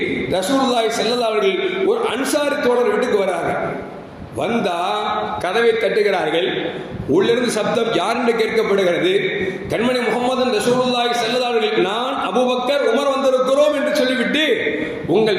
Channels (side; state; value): both; identical; correlation 1.00